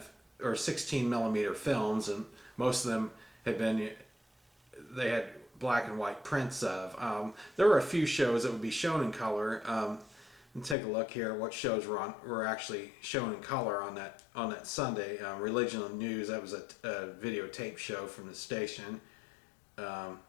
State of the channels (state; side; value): drops out; right; at 10.8 s